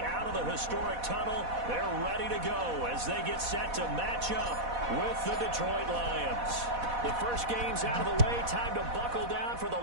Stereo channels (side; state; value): left; late; 4.1 ms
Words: out of the historic tunnel. They're ready to go as they get set to match up with the Detroit Lions. The first game's out of the way. Time to buckle down for the